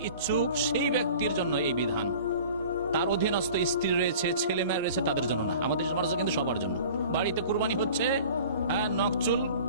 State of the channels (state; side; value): inverted; both; correlation -0.44